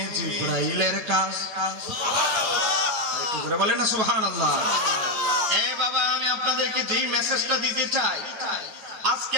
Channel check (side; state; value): left; late; 9.2 ms